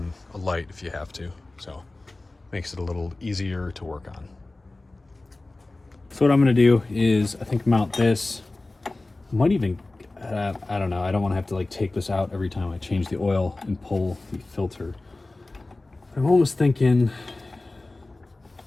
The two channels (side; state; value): right; quieter; 3.0 dB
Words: a light if you have to. So makes it a little easier to work on. So what I'm gonna do is I think mount this. I might even, I don't know, I don't wanna have to like take this out every time I change the oil and pull the filter. I'm almost thinking